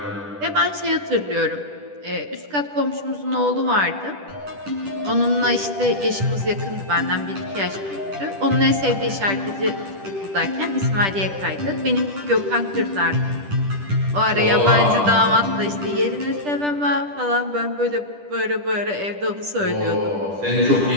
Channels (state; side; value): late; left; 10 ms